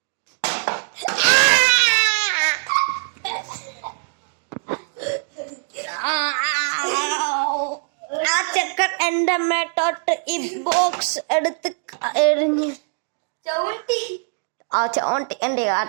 ആ ചെക്കൻ എന്റെ മേട്ടോട്ട് ഈ ബോക്സ് എടുത്ത് എറിഞ്ഞ് ചോണ്ടി എന്റെ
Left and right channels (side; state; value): left; silent; digital silence